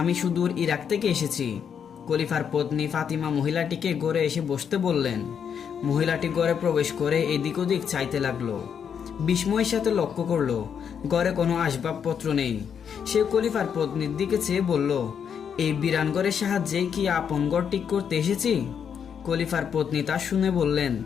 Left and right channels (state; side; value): quieter; right; 7.6 dB